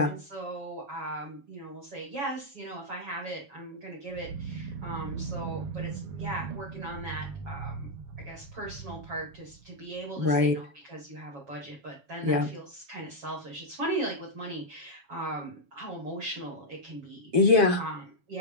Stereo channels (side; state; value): left; late; 7.2 ms